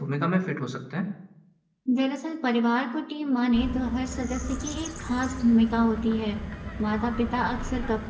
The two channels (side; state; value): both; identical; correlation 1.00